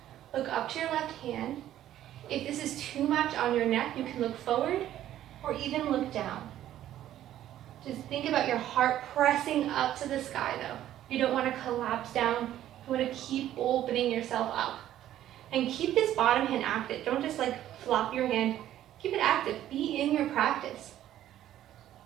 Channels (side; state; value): left; quieter; 12.4 dB